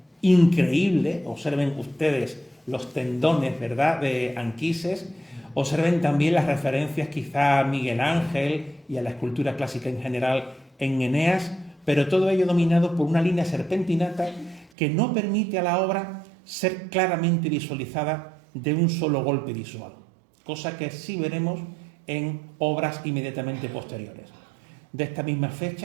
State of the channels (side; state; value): left; drops out; at 14.7 s